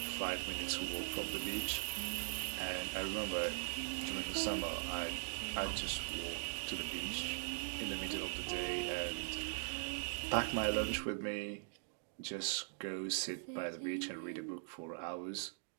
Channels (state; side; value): silent; left; digital silence